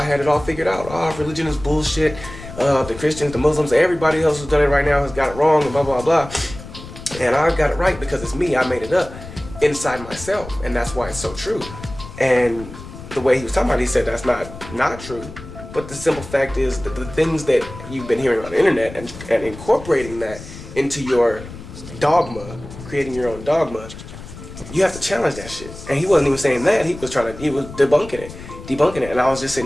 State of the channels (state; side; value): noise; left; rumble, 14 dB below the sound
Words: had it all figured out. Oh, religion is bullshit. The Christians, the Muslims, everybody else who's done it right now has got it wrong and blah, blah, blah. And I got it right because it's me. I made it up inside myself. And that's why it's so true. And the way he was talking about it, he said that's not true. But the simple fact is that the things that you've been hearing on the internet and incorporating that into your dogma, creating your own dogma, you have to challenge that shit. And he wasn't even saying that. He was debunking it. And I was just